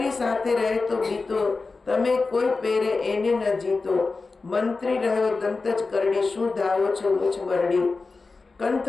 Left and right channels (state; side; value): quieter; right; 4.0 dB